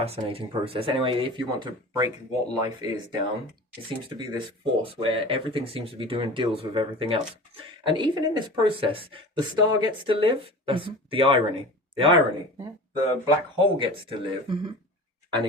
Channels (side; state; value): both; normal; correlation 0.36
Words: process. Anyway, if you want to break what life is down, it seems to be this force where everything seems to be doing deals with everything else. And even in this process, the star gets to live. That's the irony. The irony. Yeah. The black hole gets to live and